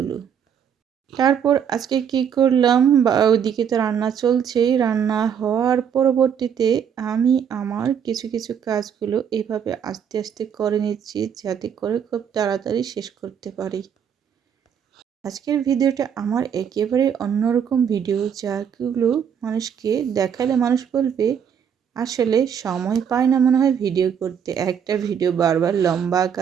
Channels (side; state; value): left; quieter; 8.0 dB